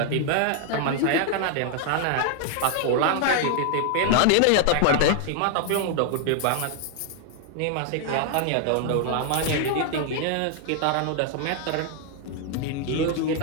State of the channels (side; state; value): both; different; correlation 0.00